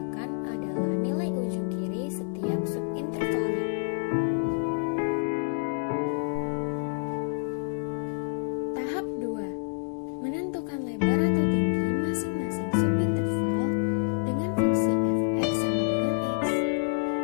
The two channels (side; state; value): right; silent; digital silence